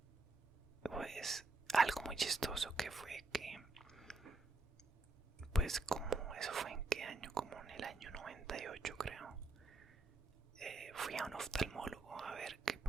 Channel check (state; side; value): quieter; left; 3.4 dB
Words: pues algo muy chistoso que fue que pues como eso fue en qué año, como en el año 98 creo. Fui a un oftalmólogo a ver que